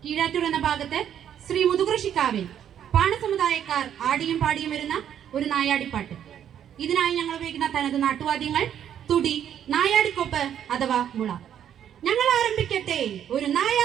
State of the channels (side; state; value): left; quieter; 9.7 dB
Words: കീഴാറ്റൂർ എന്ന ഭാഗത്ത് ശ്രീ മുതുകൃഷിക്കാവിൽ പാണസമുദായക്കാർ ആടിയും പാടിയും വരുന്ന ഒരു നായാടിപ്പാട്ട്. ഇതിനായി ഞങ്ങൾ ഉപയോഗിക്കുന്ന തനത് നാട്ടുവാദ്യങ്ങൾ തുടി, നായാടിക്കൊപ്പ് അഥവാ മുള. ഞങ്ങൾ ആരംഭിക്കട്ടെ ഒരു